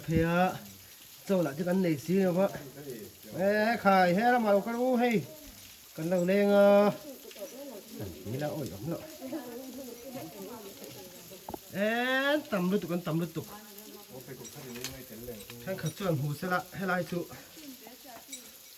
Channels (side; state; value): both; identical; correlation 1.00